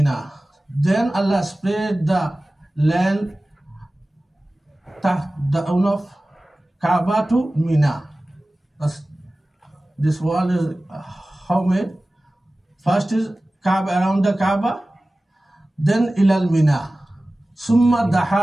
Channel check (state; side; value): normal; both; correlation 0.97